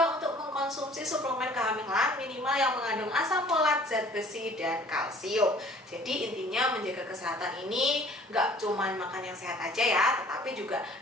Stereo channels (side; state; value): both; normal; correlation 0.53